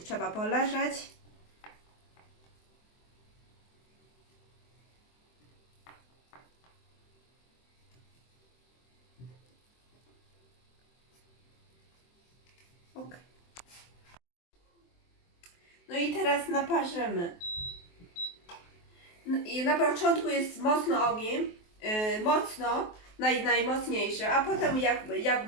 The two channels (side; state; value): right; late; 23 ms